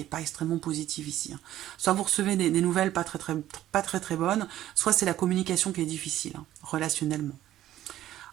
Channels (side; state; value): left; quieter; 13.3 dB